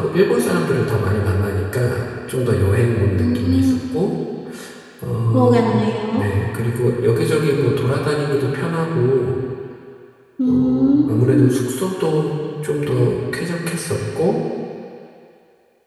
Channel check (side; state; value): both; identical; correlation 1.00